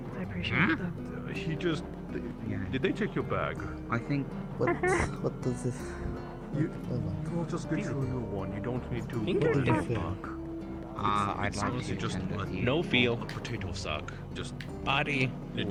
appreciate it. He just. Did they take your bag? I think. What does this? We'll just get you a new one. You don't need to. What do you think? I'd like to just no feel. a potato sack. Just Body.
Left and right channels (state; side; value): identical; both; correlation 1.00